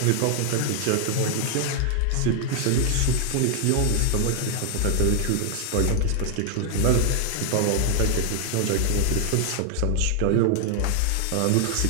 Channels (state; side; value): different; both; correlation 0.00